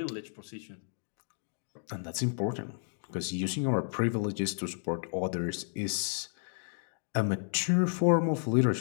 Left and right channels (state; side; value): silent; right; 56 dB below the other